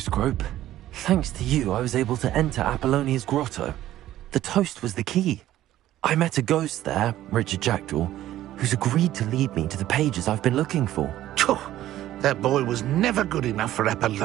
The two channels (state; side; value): quieter; left; 13.7 dB